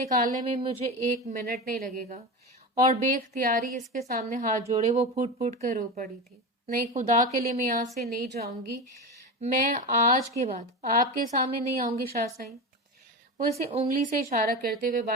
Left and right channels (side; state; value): both; normal; correlation 0.23